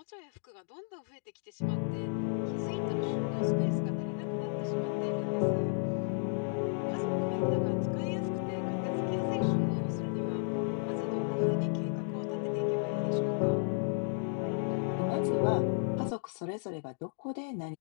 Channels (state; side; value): silent; right; digital silence